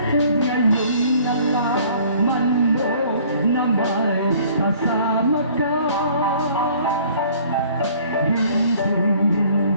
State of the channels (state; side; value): inverted; both; correlation -0.55